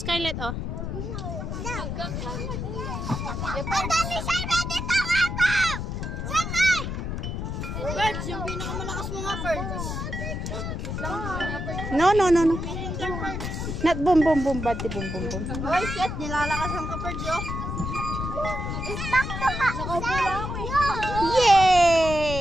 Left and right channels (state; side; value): noise; left; rumble, 4 dB below the sound